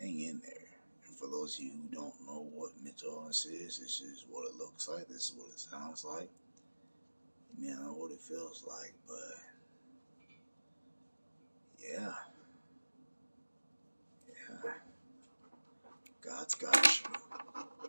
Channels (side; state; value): both; inverted; correlation -1.00